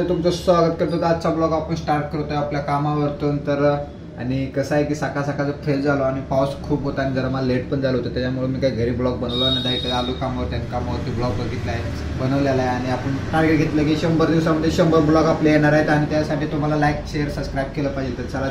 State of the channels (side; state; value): both; identical; correlation 1.00